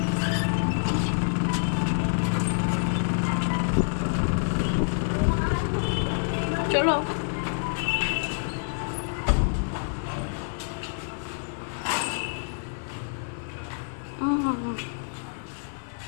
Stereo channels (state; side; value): silent; right; 60 dB below the other